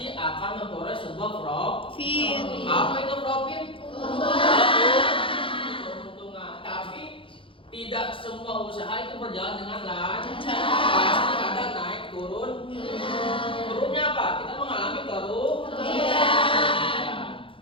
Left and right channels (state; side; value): late; right; 0.25 ms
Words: akan memperoleh sebuah profit. Apa itu profit? Keuntungan. Tapi tidak semua usaha itu berjalan dengan lancar. Pasti ada naik turun. Turunnya apa? Kita mengalami kerugian.